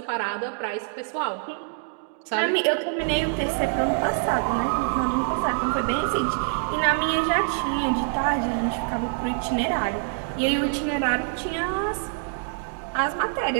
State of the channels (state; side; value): silent; left; digital silence